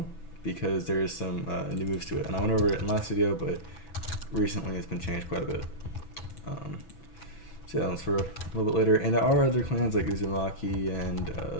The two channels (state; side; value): late; right; 6.1 ms